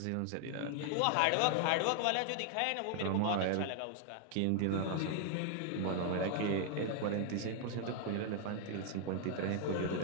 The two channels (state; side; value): different; both; correlation 0.00